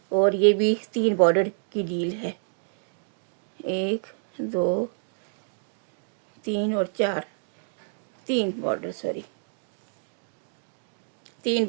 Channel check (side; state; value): left; silent; digital silence